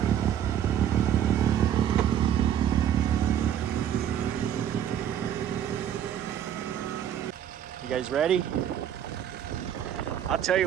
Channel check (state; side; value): quieter; left; 10.0 dB